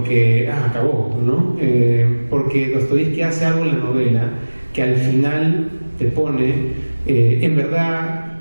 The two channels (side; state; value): both; inverted; correlation -1.00